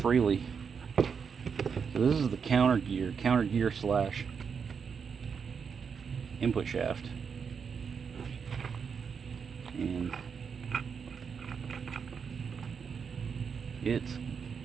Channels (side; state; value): left; quieter; 6.3 dB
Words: So this is the counter gear slash input shaft. And it's